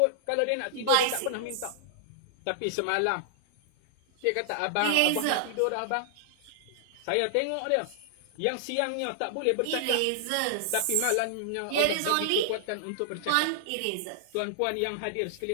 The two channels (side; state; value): both; different; correlation -0.01